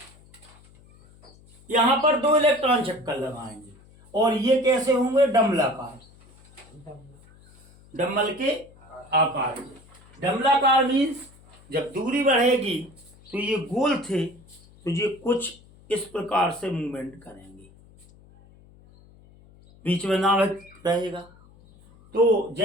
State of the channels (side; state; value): left; noise; hum, 26 dB below the sound